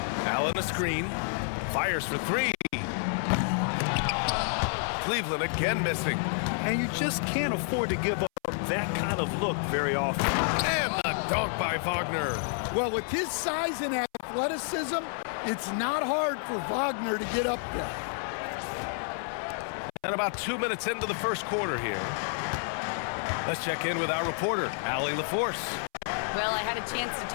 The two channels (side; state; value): right; silent; 58 dB below the other